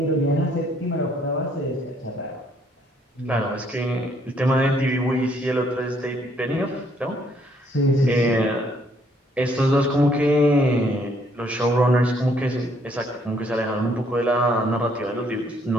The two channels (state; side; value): normal; both; correlation 0.67